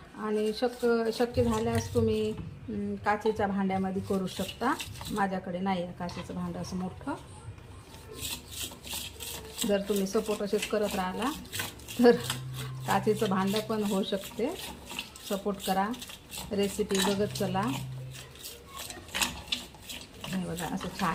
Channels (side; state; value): both; identical; correlation 1.00